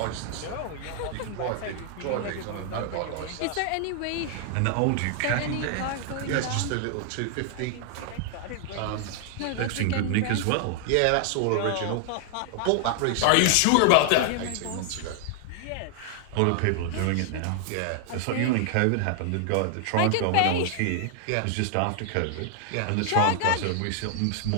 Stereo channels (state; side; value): different; both; correlation 0.00